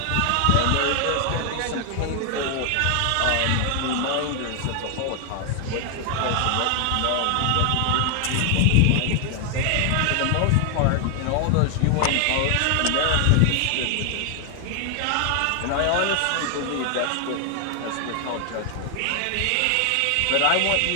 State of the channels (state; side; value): different; both; correlation 0.00